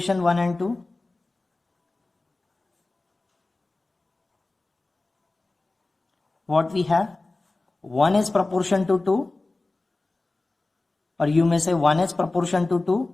1 and 2, what we have, 1 is proportion to 2, or you may say 1 is proportion to 2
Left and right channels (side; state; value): right; quieter; 3.1 dB